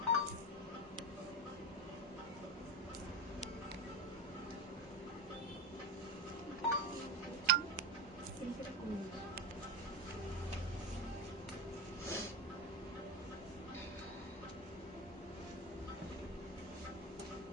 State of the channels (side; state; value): both; normal; correlation 0.18